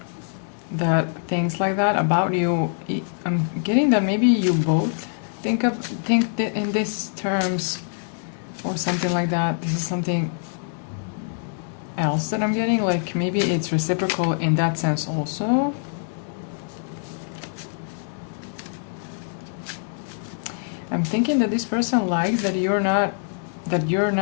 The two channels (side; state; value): right; silent; digital silence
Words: that thinks like that about you. I'm getting that maybe you both think that in these terms or something like that. This is something else that I'm getting, like maybe it's reciprocal in that sense also. I'm thinking that this person likes that you're not